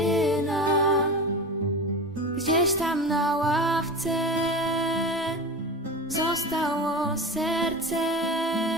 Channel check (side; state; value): both; normal; correlation 0.29